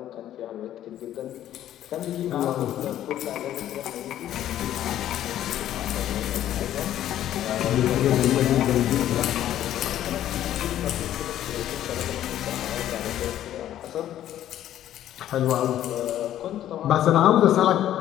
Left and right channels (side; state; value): right; quieter; 12.0 dB